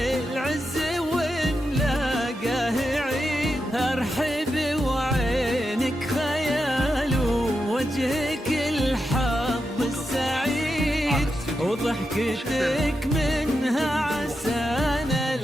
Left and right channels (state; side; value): normal; both; correlation 0.87